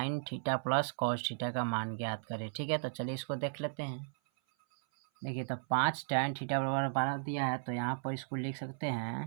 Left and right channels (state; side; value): silent; left; 54 dB below the other